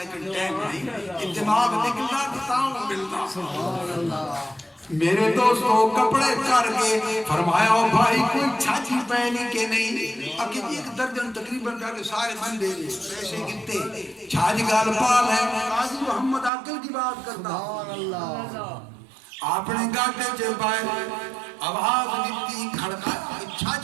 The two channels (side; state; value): left; drops out; at 16.5 s